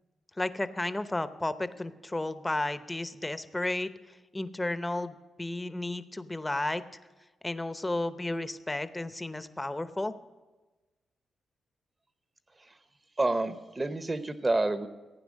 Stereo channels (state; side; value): normal; both; correlation 0.97